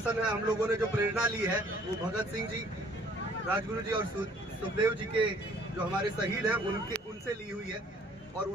है, हम लोगों ने जो प्रेरणा ली है वो भगत सिंह जी, राजगुरु जी और सुखदेव जी के जो हमारे शहीद हैं उनसे ली हुई है। और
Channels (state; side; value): normal; both; correlation 0.58